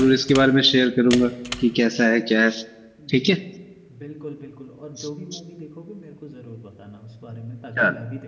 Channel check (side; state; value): both; identical; correlation 1.00